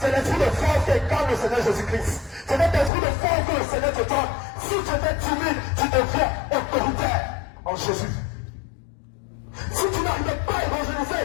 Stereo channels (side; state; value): right; drops out; at 2.9 s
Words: l'esprit de force qui incarne le Seigneur Jésus-Christ. C'est cet esprit de force que le Seigneur te donne. Si tu étais timide, tu deviens autoritaire en Jésus. Si tu n'arrivais pas à évangéliser,